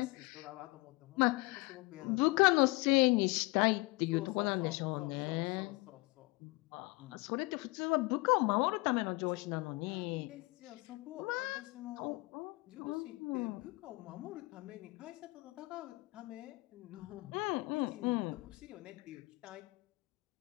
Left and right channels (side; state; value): right; quieter; 24.1 dB